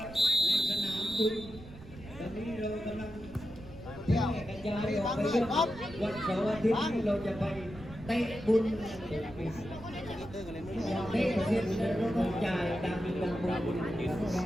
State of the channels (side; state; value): right; noise; rumble, 17 dB below the sound